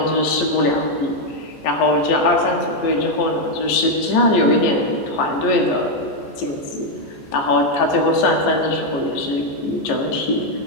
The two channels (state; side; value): late; right; 14 ms